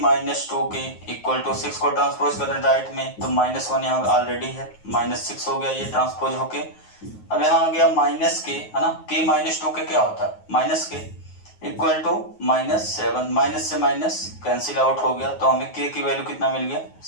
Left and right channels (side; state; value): right; late; 9.4 ms